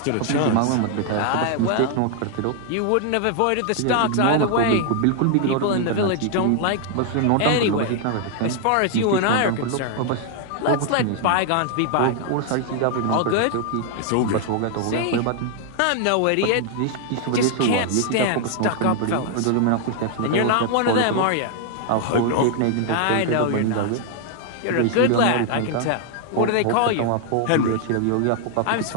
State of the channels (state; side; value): different; both; correlation 0.00